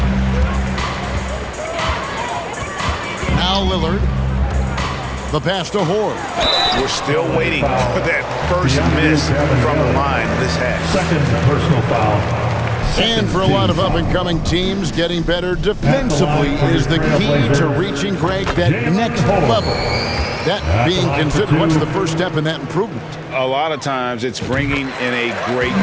Now Lillard. The pass to Horde. We're still waiting for that first miss from the line this half. Second personal foul. And for a lot of up-and-coming teams, getting better defensively is the key to reaching, Greg, that next level. That being considered, what's the first step in that improvement? A lot of times it's bringing in a great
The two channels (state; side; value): identical; both; correlation 1.00